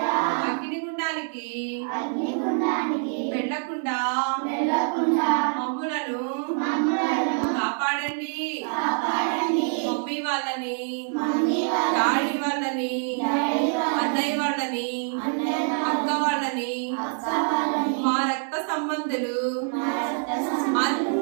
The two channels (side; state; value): left; silent; 61 dB below the other